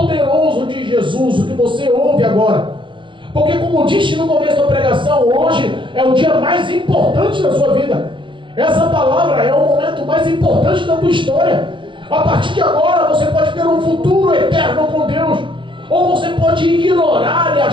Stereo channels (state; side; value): late; left; 0.24 ms